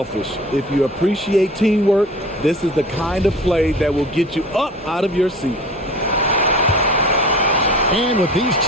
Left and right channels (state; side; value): normal; both; correlation 0.41